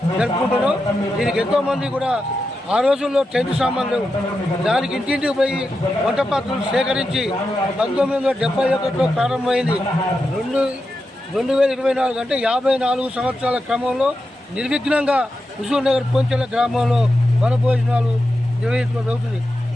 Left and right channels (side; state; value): both; normal; correlation 0.89